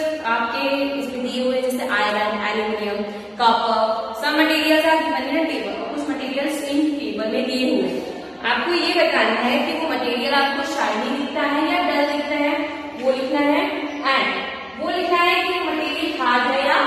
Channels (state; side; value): identical; both; correlation 1.00